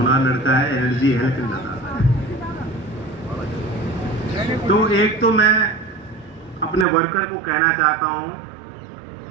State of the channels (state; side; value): drops out; left; at 6.9 s